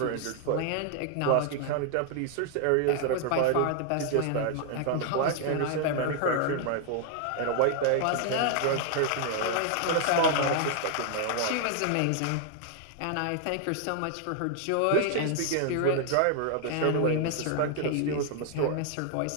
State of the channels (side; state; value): both; different; correlation 0.00